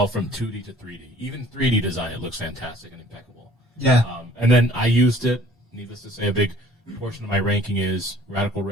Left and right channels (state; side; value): normal; both; correlation 0.53